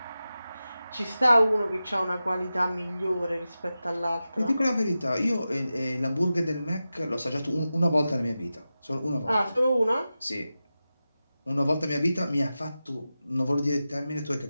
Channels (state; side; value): inverted; both; correlation -0.93